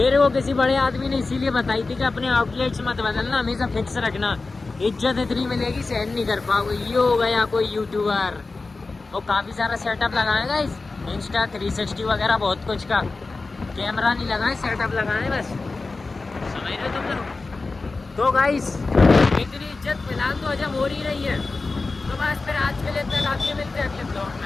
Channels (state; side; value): quieter; right; 3.7 dB